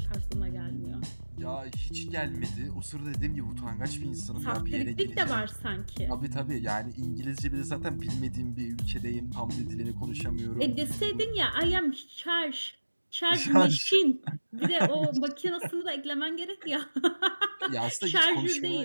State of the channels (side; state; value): both; inverted; correlation -1.00